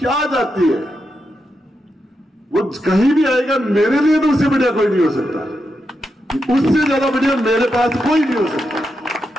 जाती है, वो कहीं भी आएगा, मेरे लिए तो उससे बढ़िया कोई नहीं हो सकता, उससे ज्यादा बढ़िया मेरे पास कोई नहीं हो सकता।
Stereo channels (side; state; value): both; normal; correlation 0.85